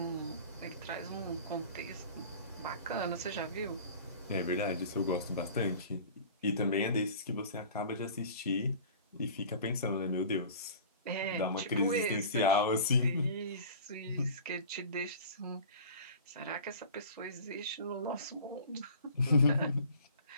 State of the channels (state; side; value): inverted; both; correlation -0.42